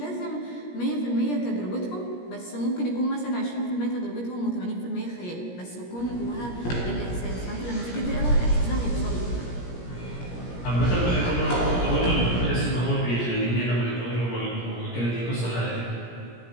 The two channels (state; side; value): late; right; 17 ms